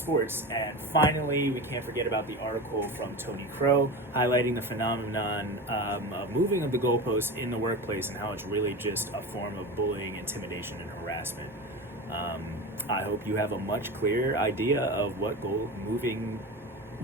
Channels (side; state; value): both; normal; correlation 0.27